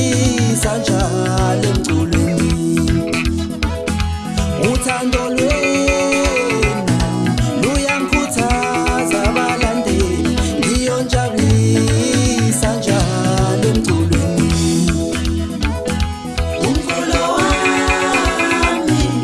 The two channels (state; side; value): identical; both; correlation 1.00